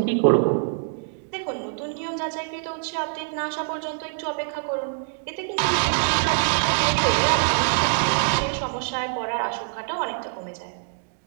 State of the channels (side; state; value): left; silent; 62 dB below the other